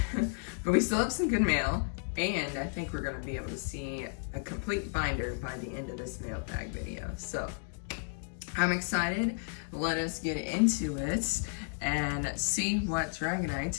we still have some good mail, and I think we're going to be able to see a complete binder by the end of this mailbag video. So I'm excited. Let us get into it and see what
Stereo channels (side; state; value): right; silent; 56 dB below the other